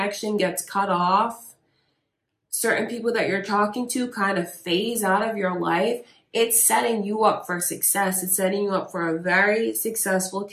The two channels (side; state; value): both; identical; correlation 1.00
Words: gets cut off, certain people that you're talking to kind of phase out of your life, it's setting you up for success. It's setting you up for a very successful